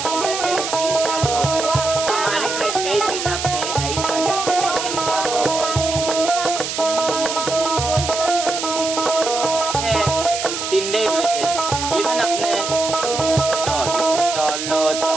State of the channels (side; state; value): right; noise; hiss, 5 dB below the sound